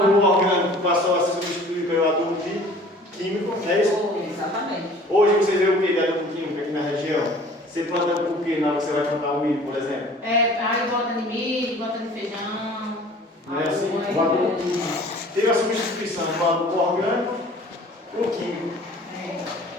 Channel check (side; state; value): both; normal; correlation 0.48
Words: orgânico passou a ser substituído pelo adubo químico, não é isso? Exatamente. Hoje você vê o que de adubo químico aqui na região? Você planta o que na hora que você vai plantar o milho, por exemplo? Aí bota de milho, bota de feijão. Não é assim? O adubo teve a substituição do adubo orgânico por químico.